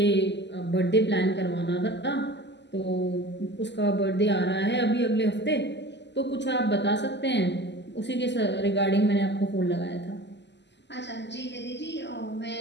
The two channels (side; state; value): right; late; 0.51 ms